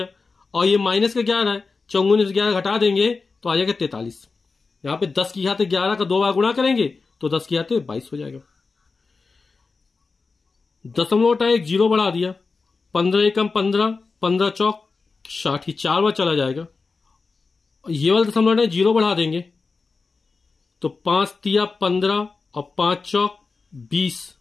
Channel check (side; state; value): right; quieter; 4.3 dB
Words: और ये माइनस का 11 है, 54 में 11 घटा देंगे तो आ जाएगा 43। यहां पे 10⁻11 का 2 बार गुणा करेंगे तो 10⁻22 हो जाएगा। दशमलव हटा एक जीरो बढ़ा दिया, 15 एकम 15, 15 चौक 60, 4 बार चला जाएगा। ये वाला दशमलव हटा जीरो बढ़ा देंगे तो 5 तिया 15 और 5 चौक 20